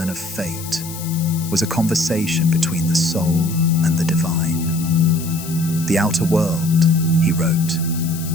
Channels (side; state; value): left; noise; hiss, 12 dB below the sound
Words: of fate was a conversation between the soul and the divine. The outer world, he wrote,